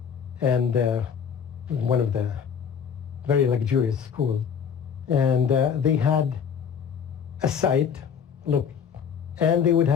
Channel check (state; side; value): quieter; right; 7.2 dB